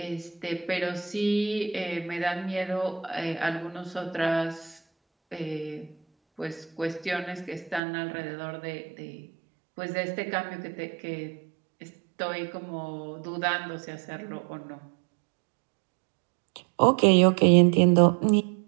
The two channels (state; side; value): drops out; left; at 7.8 s